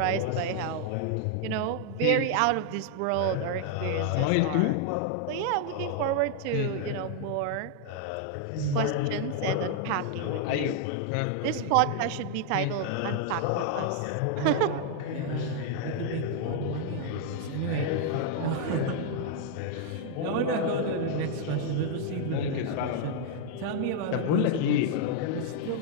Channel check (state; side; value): different; both; correlation 0.00